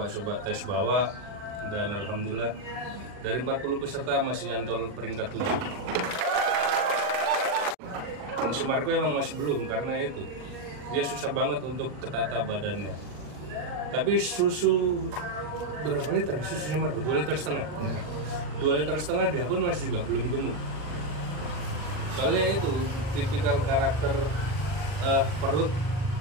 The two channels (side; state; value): left; late; 40 ms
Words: tes bawa. Dan alhamdulillah dari 40 peserta masih nyantol peringkat 7. Kalau si Marco emang masih belum, karena itu dia susah banget untuk ketata badannya. Tapi susu berapa liter susunya Marco? 2,5 liter. Ya. 2,5 liter dia pun masih juga belum gemuk. Soalnya itu tipikal karakter perut,